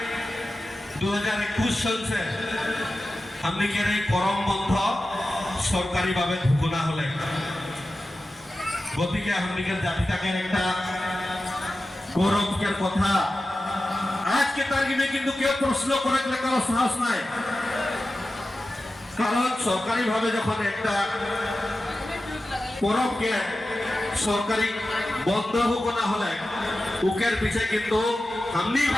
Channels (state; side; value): normal; both; correlation 0.94